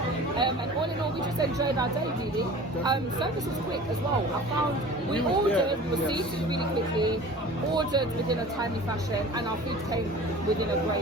And all in all, we just enjoyed our day really. Service was quick as well. I found we ordered, we were seated really quickly, ordered within a timely fashion, and our food came within a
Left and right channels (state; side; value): normal; both; correlation 0.41